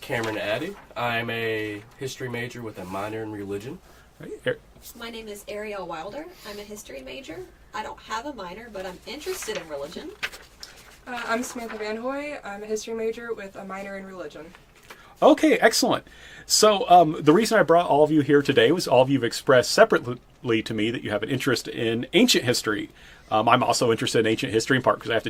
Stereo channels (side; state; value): both; identical; correlation 1.00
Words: Addy. I'm a history major with a minor in religion. Right. My name is Arielle Wilder. I'm a history major. I don't have a minor, but I'm interested in religion. I'm Samantha Van Hoy. I'm a history major with a minor in religion. Okay, excellent. So the reason I brought all of you here today was all of you have expressed separately to me that you have an interest in ancient history. I'm also interested in ancient history in part because I have